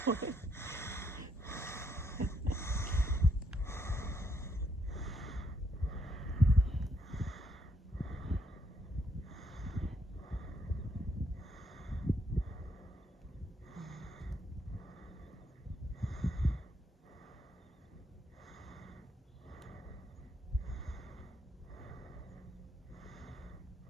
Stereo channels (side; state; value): both; normal; correlation 0.75